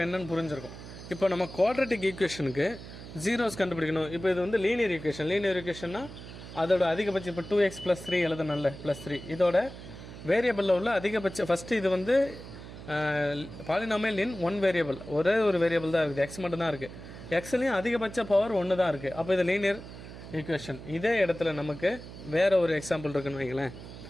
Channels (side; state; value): right; noise; hum, 14 dB below the sound